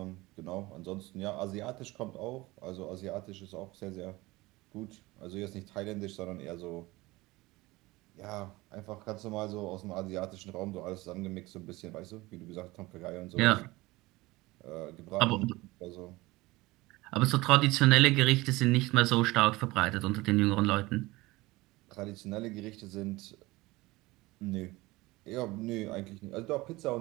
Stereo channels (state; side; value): quieter; left; 20.7 dB